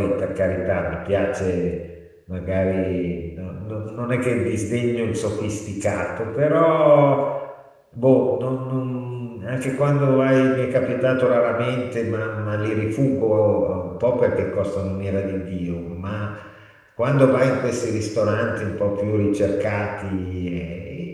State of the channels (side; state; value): both; identical; correlation 1.00